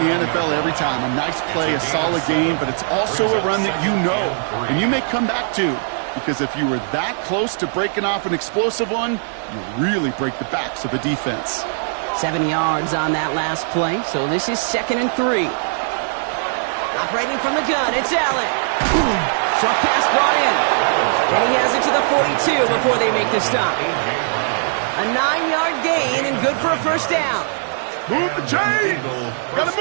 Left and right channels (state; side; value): silent; left; 60 dB below the other